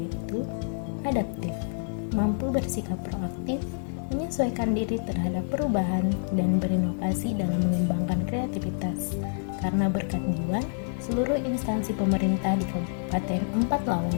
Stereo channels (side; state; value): right; silent; digital silence